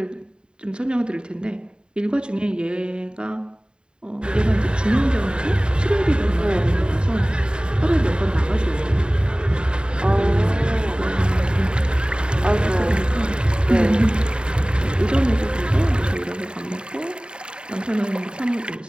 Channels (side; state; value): left; late; 0.051 ms